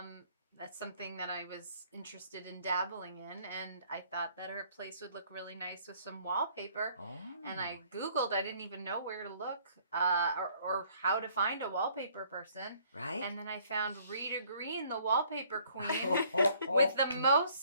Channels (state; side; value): inverted; both; correlation -0.60